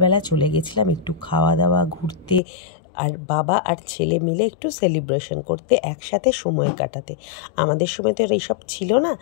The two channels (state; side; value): drops out; right; at 2.4 s